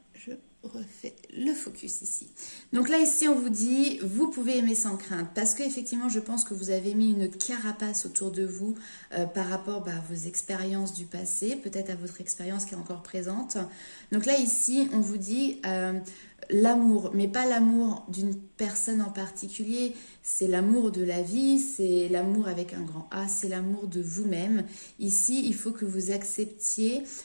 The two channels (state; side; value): inverted; both; correlation -1.00